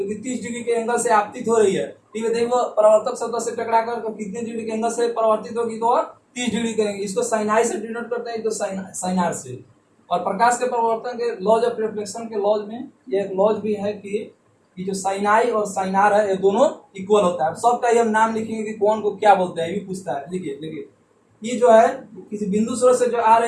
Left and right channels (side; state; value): both; identical; correlation 1.00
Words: कि 30 डिग्री के एंगल से आपतित हो रही है, ठीक है, देखो परावर्तक सतह से टकराकर तो कितने डिग्री के एंगल से परावर्तित होगी, तो 30 डिग्री करेंगे। इसको साइन आई से डिनोट करते हैं, तो साइन आर से। और प्रकाश के परावर्तन के लॉज ऑफ रिफ्लेक्शन के लॉज में ये एक लॉज भी है कि ये जो साइन आई और साइन आर है ये दोनों इक्वल होता है। सबका ही हम नाम लिखेंगे कि कौन को क्या बोलते हैं, ये भी पूछता है। देखिए ये जो है किसी बिंदु स्रोत से जो आ